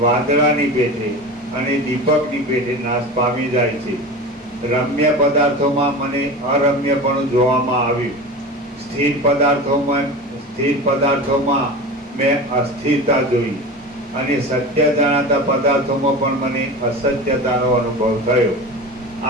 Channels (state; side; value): normal; both; correlation 0.30